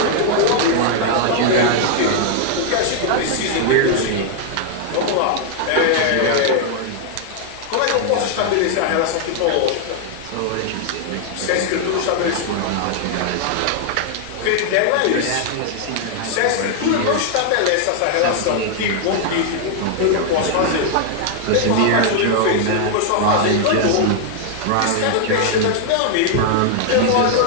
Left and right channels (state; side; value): different; both; correlation 0.00